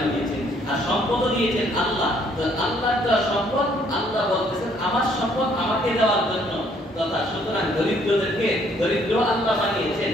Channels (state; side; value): normal; both; correlation 0.65